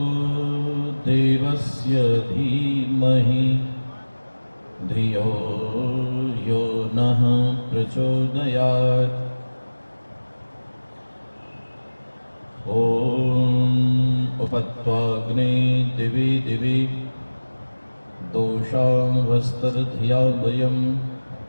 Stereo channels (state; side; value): inverted; both; correlation -1.00